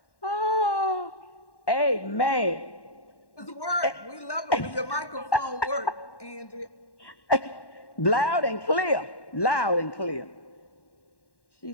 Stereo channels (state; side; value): late; right; 1.1 ms